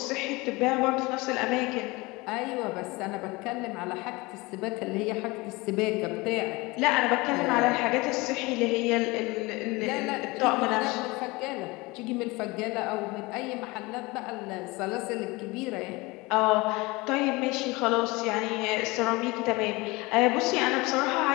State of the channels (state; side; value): quieter; right; 23.5 dB